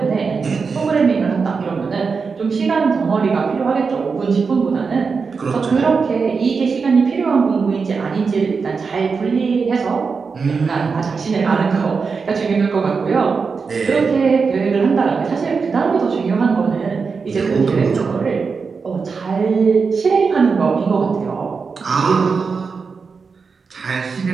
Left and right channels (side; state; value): left; quieter; 5.1 dB